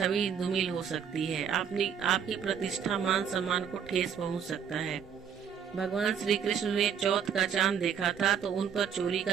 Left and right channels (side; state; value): left; quieter; 7.6 dB